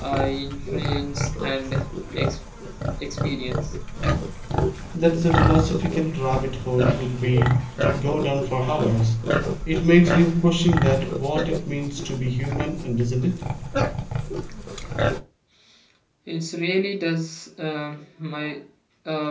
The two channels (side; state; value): both; identical; correlation 1.00